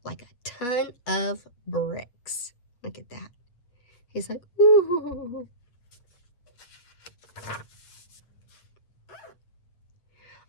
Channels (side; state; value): right; late; 8.2 ms